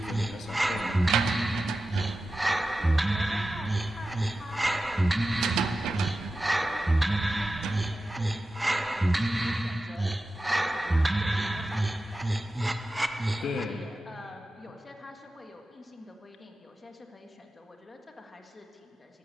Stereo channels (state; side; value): normal; both; correlation 0.93